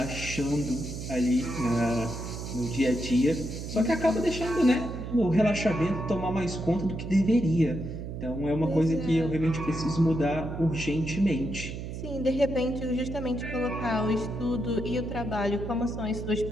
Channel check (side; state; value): right; noise; hum, 7 dB below the sound